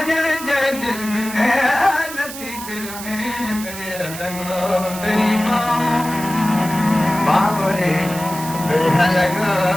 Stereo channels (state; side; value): noise; right; hiss, 11 dB below the sound